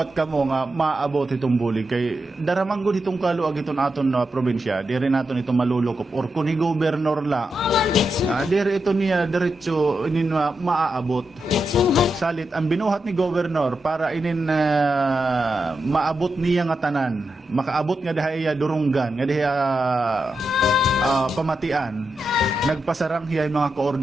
ka mo nga maabot itong bulig kay daramang gud itong kaluag itong aton probinsya, dire naton itong malulukop or kung gobernador la, dire ito niya diretso inin maaabot. Salit ang binuhat ni gobernador para inin maabot niya nga tanan, makaabot nga dahaya durunggan, nga dahaya pamatian, nagpasarang hiyay mga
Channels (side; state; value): both; normal; correlation 0.87